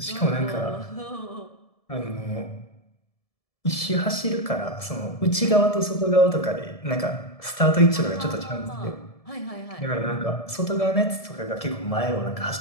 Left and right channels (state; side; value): late; right; 1.7 ms